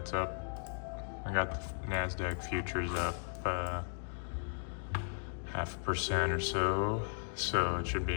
up. I got the NASDAQ futures up 0.5% or so it should be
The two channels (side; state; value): right; silent; digital silence